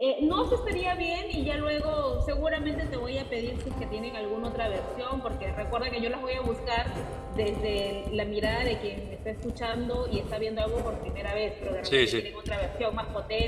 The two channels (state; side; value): identical; both; correlation 1.00